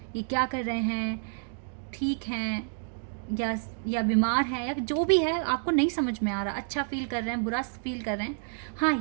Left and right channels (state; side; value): silent; left; digital silence